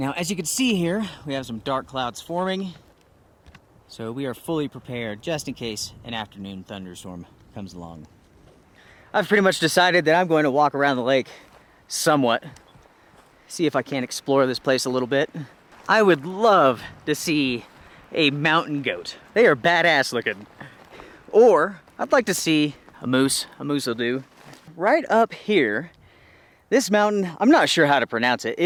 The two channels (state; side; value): identical; both; correlation 1.00